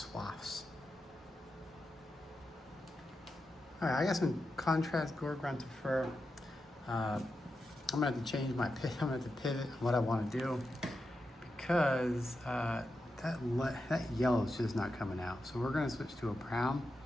All right, I got some contrast gore grunted fur. I'm gonna have to change my pivot. I'm gonna have to pivot what I wanna do, because that yellow is just not coming out. So we're gonna switch to a brown.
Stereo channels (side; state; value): both; normal; correlation 0.88